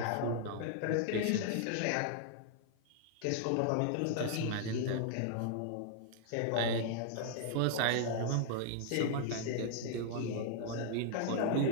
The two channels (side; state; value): both; different; correlation -0.01